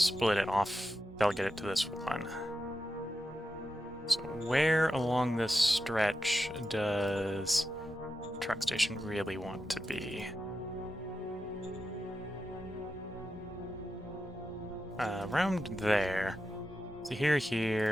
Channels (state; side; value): normal; both; correlation 0.89